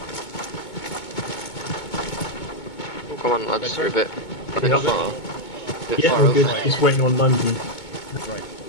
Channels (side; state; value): right; late; 2.2 ms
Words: Oh, come on, lads, you're a bit far. Yeah, Far we're over. good. Just waiting on London. Right.